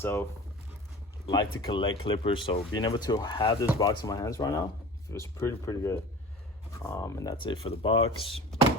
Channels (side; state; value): both; normal; correlation 0.38